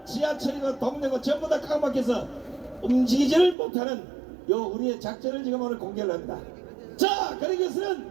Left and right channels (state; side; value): drops out; left; at 3.6 s